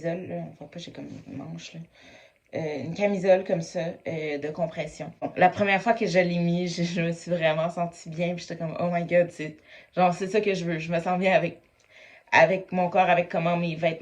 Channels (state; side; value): identical; both; correlation 1.00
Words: Là. On voit pas, j'ai comme une manche là. Une camisole comme ça de compression. Bon, la première fois que je l'ai mis, je me suis vraiment sentie bien. Puis j'étais comme, oh my god, c'est ça que je veux. Je me sens bien avec mon corps, avec comment mes